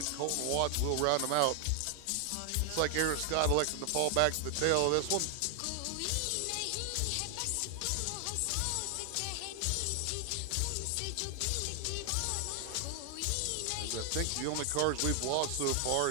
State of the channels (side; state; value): both; different; correlation 0.00